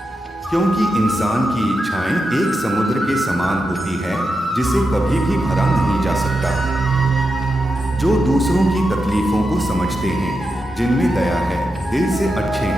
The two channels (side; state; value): both; normal; correlation 0.88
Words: क्योंकि इंसान की इच्छाएं एक समुद्र के समान होती है जिसे कभी भी भरा नहीं जा सकता। जो दूसरों की तकलीफों को समझते हैं, जिनमें दया है, दिल से अच्छे